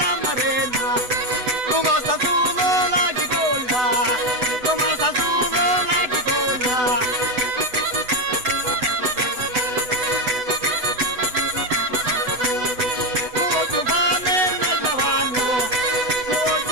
marena, come sta solo la cipolla, come sta solo la cipolla.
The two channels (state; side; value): late; left; 8.0 ms